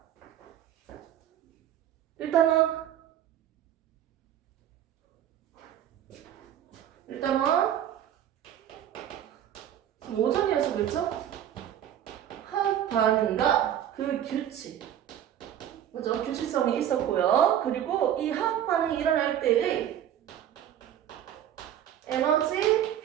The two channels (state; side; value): quieter; left; 10.6 dB